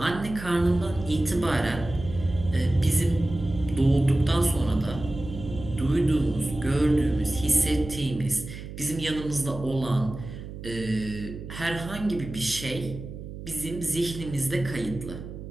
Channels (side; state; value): right; noise; hum, 11 dB below the sound